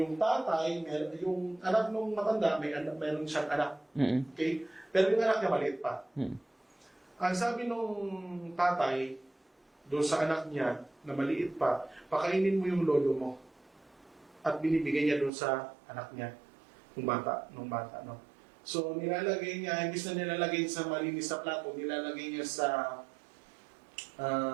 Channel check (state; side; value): drops out; left; at 15.3 s